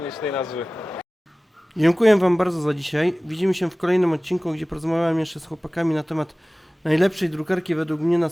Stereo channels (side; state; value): both; normal; correlation 0.98